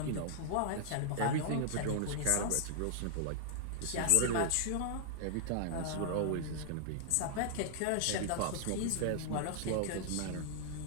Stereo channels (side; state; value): both; different; correlation -0.01